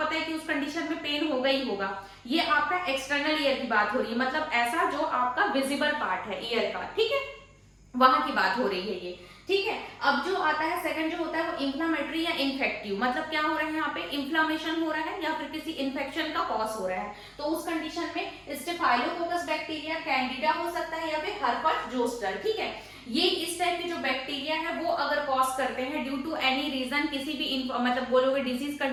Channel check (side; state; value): both; identical; correlation 1.00